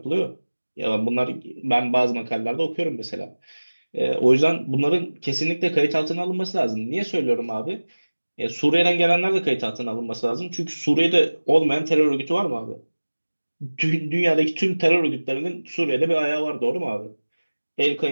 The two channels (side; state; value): both; inverted; correlation -1.00